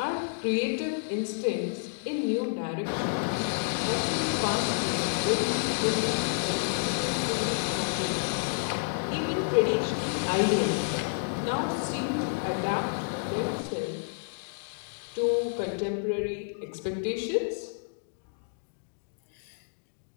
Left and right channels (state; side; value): silent; right; digital silence